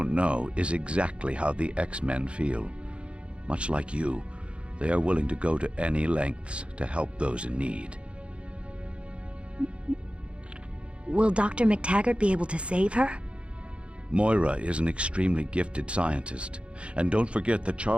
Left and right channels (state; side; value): late; left; 0.059 ms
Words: know, is exactly how the X-Men feel. Much like you, they are willing to go to any lengths to help those in need. Will Dr. McTaggart be able to save her? Moira is an extremely gifted scientist, and don't forget that